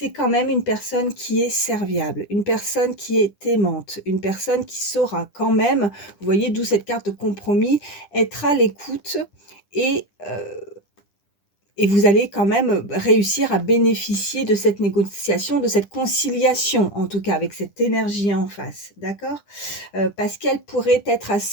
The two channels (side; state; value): right; late; 10 ms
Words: quand même une personne qui est serviable, une personne qui est aimante, une personne qui saura quand même, vous voyez, d'où cette carte de compromis, être à l'écoute et, et vous allez quand même réussir à bénéficier de cette négociation, de cette conciliation, en tout cas avec cette énergie en face, d'accord? Parce qu'elle pourrait être